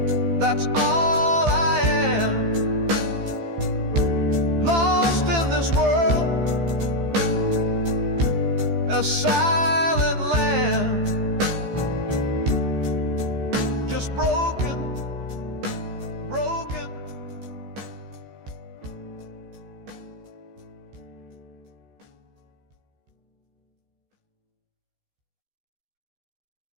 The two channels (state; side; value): late; left; 15 ms